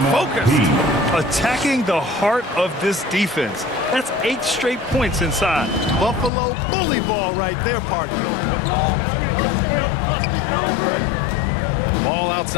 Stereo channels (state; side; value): drops out; right; at 6.3 s